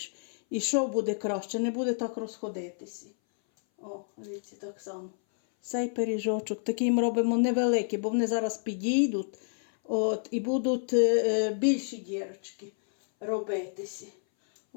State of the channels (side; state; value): right; silent; 58 dB below the other